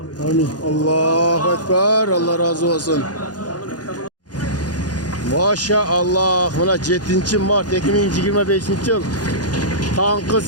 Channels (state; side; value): late; right; 0.69 ms